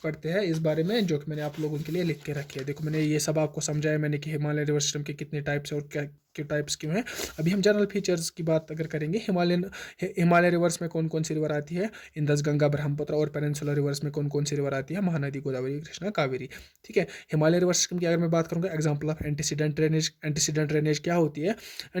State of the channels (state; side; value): identical; both; correlation 1.00